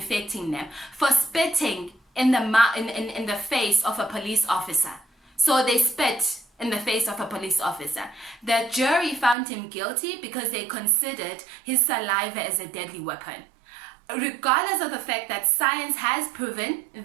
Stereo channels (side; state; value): left; drops out; at 9.3 s